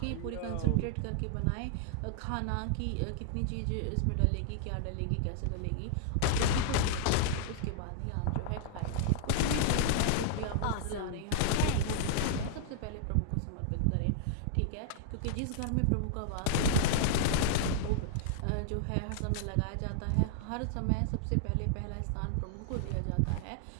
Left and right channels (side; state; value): both; different; correlation -0.01